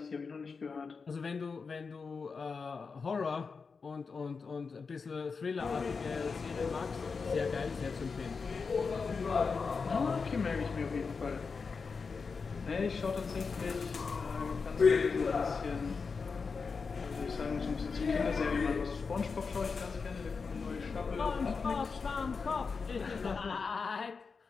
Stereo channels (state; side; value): quieter; right; 5.0 dB